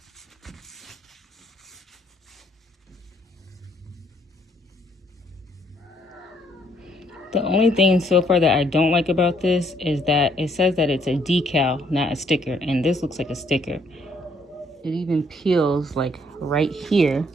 The only thing so far that I don't like about this is that it says that it's a decal, not a sticker, and this looks like a sticker. It even peels like right here,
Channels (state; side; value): normal; both; correlation 0.67